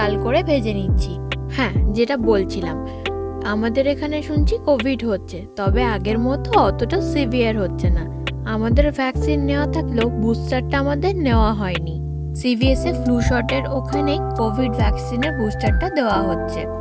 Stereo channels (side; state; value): both; identical; correlation 1.00